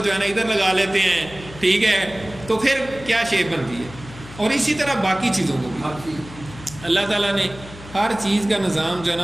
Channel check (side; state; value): left; noise; hum, 17 dB below the sound